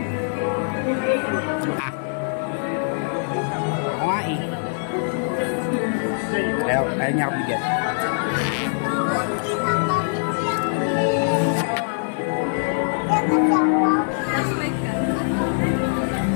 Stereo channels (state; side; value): silent; right; digital silence